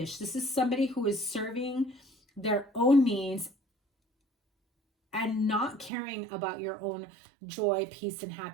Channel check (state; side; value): drops out; left; at 5.9 s